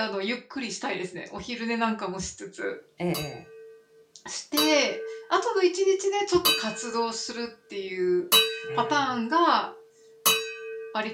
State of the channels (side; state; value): both; identical; correlation 1.00